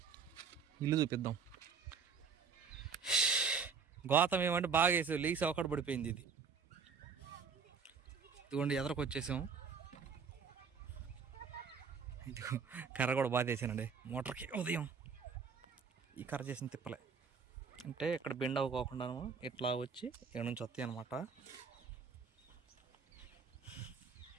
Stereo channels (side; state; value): left; quieter; 5.8 dB